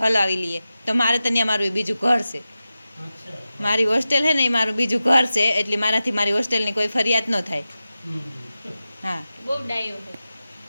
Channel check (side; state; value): both; inverted; correlation -0.94